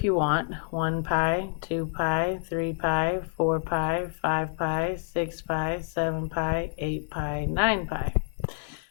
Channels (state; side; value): silent; right; digital silence